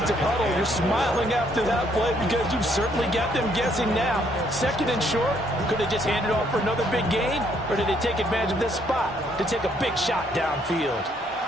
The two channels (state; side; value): normal; both; correlation 0.69